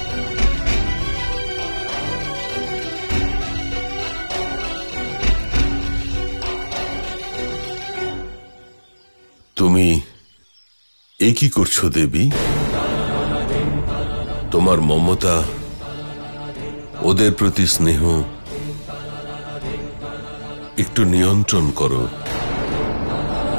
তুমি এ কি করছো দেবী? তোমার মমতা, ওদের প্রতি স্নেহ একটু নিয়ন্ত্রণ করো।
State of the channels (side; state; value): both; inverted; correlation -1.00